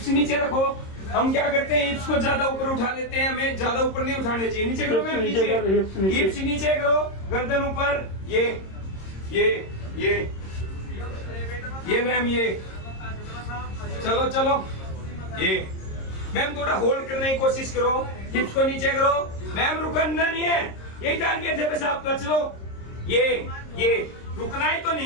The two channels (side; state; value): right; late; 26 ms